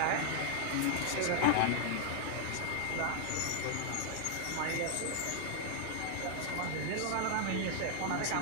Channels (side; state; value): both; different; correlation 0.00